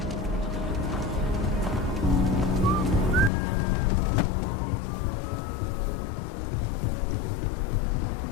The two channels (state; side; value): drops out; right; at 3.3 s